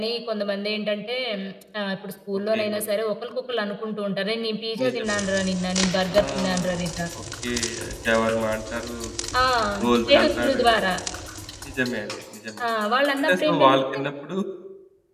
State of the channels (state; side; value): identical; both; correlation 1.00